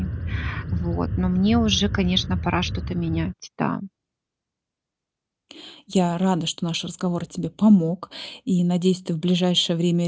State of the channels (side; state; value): both; identical; correlation 1.00